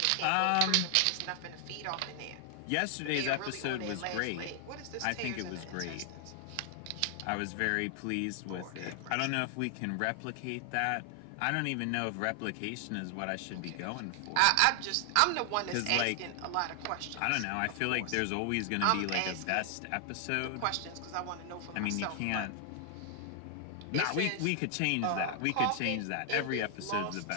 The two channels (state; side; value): different; both; correlation 0.00